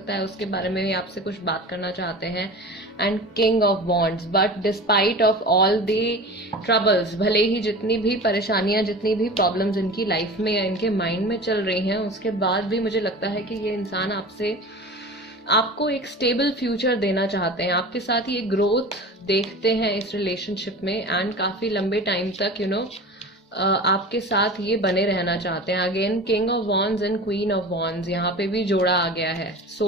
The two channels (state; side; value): normal; both; correlation 0.35